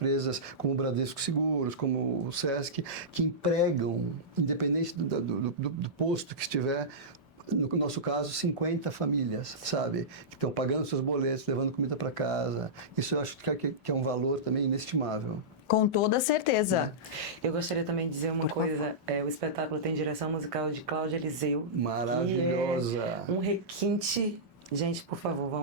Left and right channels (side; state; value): both; normal; correlation -0.15